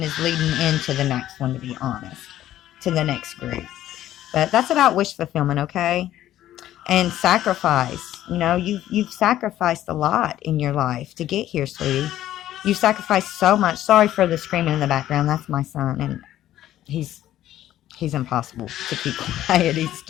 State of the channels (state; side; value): quieter; right; 13.0 dB